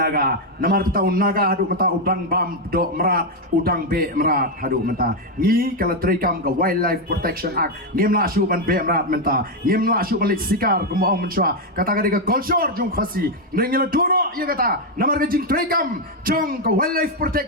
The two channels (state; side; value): normal; both; correlation 0.03